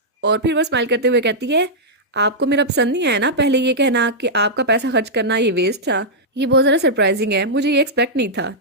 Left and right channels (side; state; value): both; normal; correlation -0.09